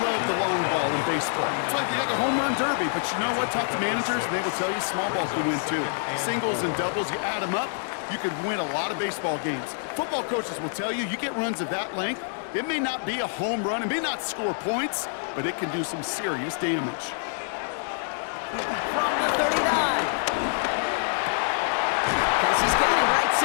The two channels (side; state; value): right; silent; digital silence